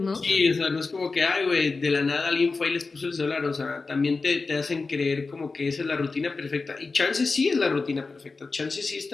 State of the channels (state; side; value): quieter; right; 4.1 dB